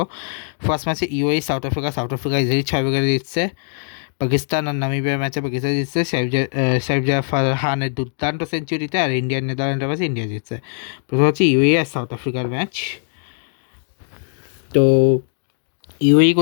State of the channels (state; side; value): silent; right; digital silence